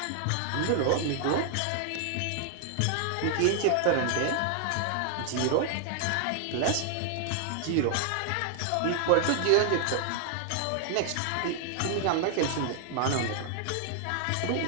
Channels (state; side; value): different; both; correlation 0.00